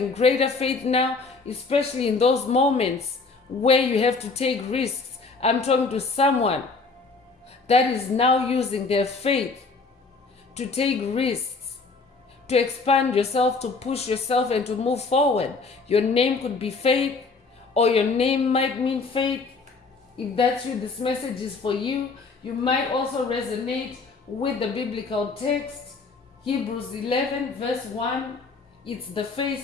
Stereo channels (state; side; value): quieter; right; 4.3 dB